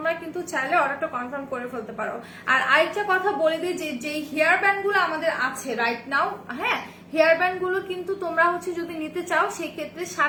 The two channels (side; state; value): both; identical; correlation 1.00